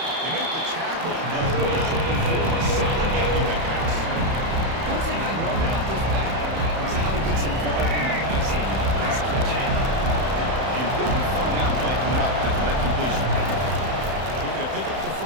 They make the tackle, but not before a solid gain on that pass. One thing I love about this back is how he gets involved in the passing. Nice catch. Important third down play coming up after that completion. Looking to pick up the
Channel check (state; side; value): late; left; 31 ms